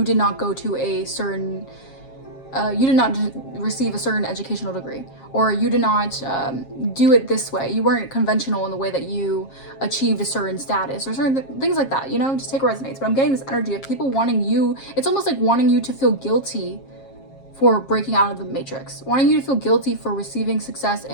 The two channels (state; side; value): late; right; 7.4 ms